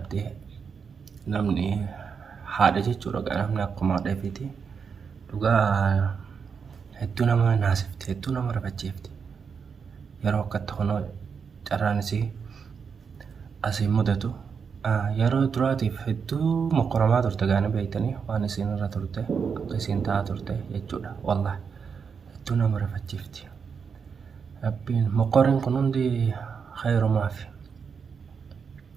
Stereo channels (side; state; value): left; quieter; 6.1 dB